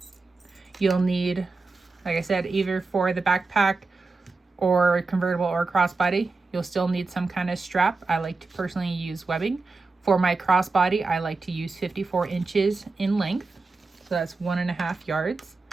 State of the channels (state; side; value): quieter; left; 3.8 dB